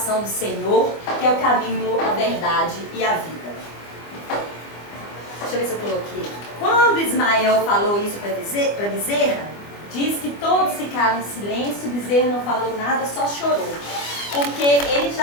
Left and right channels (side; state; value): right; late; 25 ms